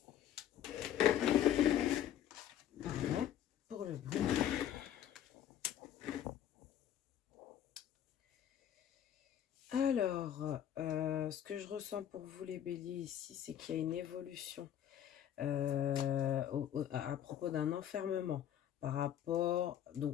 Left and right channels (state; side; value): quieter; right; 10.5 dB